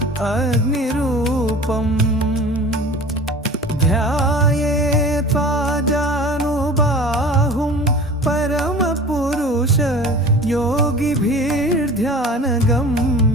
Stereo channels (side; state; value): both; normal; correlation 0.40